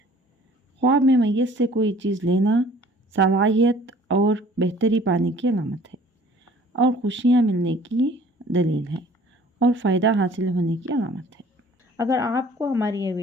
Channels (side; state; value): both; normal; correlation 0.52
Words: خواب میں میت سے کوئی چیز لینا صلاحیت اور بہتری پانے کی علامت ہے اور خوشیاں ملنے کی دلیل ہے اور فائدہ حاصل ہونے کی علامت ہے۔ اگر آپ کو ہماری یہ